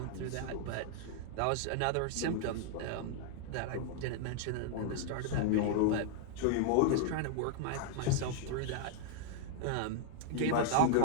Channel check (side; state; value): both; different; correlation 0.00